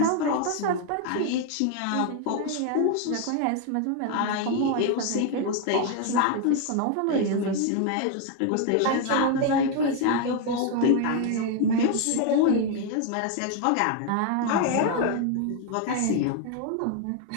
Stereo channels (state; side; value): different; both; correlation 0.01